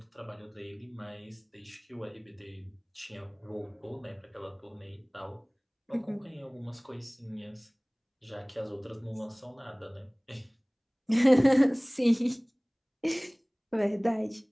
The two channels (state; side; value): identical; both; correlation 1.00